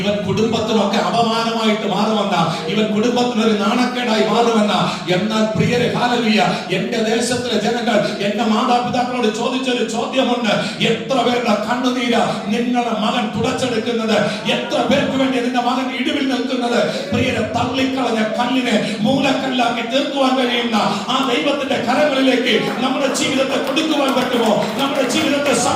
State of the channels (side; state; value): both; identical; correlation 1.00